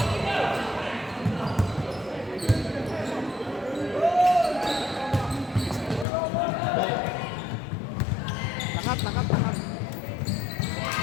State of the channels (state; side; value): drops out; right; at 6.1 s